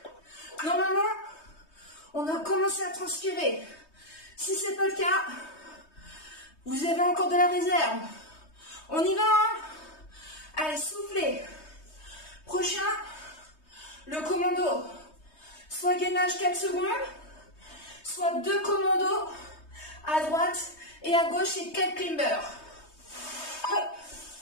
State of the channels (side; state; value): right; late; 3.2 ms